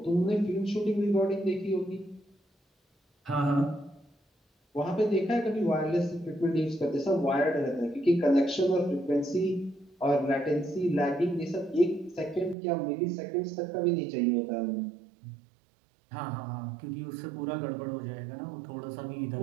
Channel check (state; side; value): drops out; left; at 12.6 s